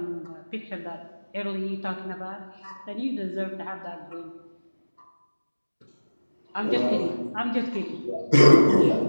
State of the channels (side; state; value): both; inverted; correlation -1.00